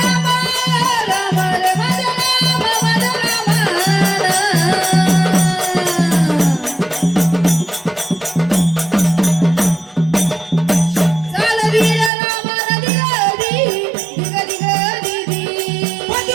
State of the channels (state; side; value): drops out; left; at 12.1 s